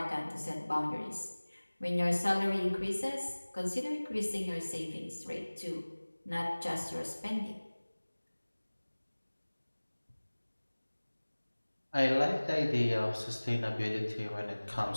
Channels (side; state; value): both; inverted; correlation -1.00